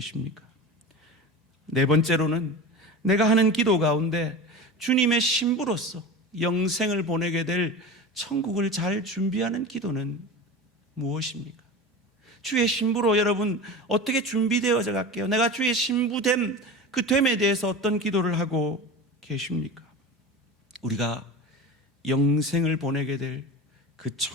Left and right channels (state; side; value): normal; both; correlation 0.30